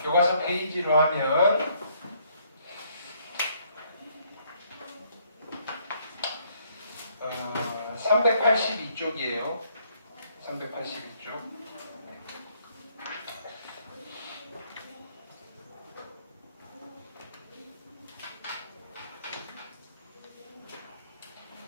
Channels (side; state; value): both; inverted; correlation -0.67